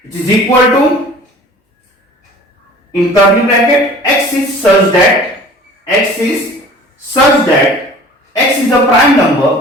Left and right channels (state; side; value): normal; both; correlation 0.46